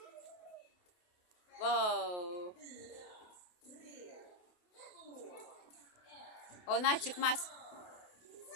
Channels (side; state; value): right; late; 28 ms